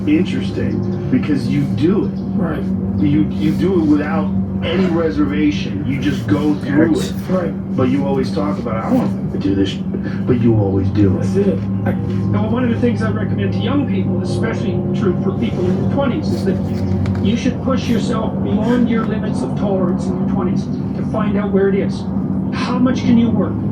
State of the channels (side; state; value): both; identical; correlation 1.00